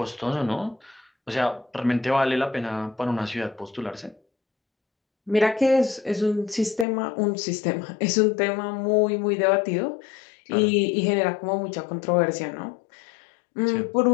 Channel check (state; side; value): drops out; right; at 6.9 s